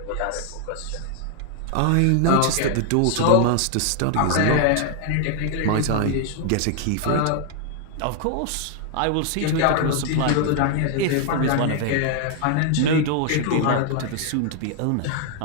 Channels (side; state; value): both; different; correlation 0.00